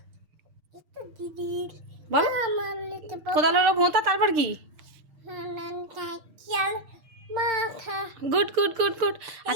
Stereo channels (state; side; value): late; left; 6.6 ms